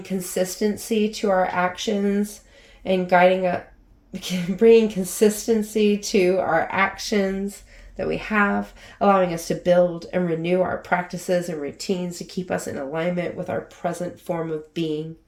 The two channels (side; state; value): both; identical; correlation 1.00